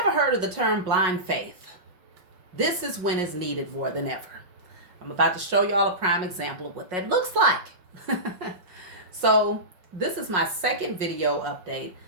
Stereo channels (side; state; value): left; late; 5.5 ms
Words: heard of the term blind faith, this is when it's needed more than ever. I'm about to show y'all a prime example of what that looks like. So, this is my second video update.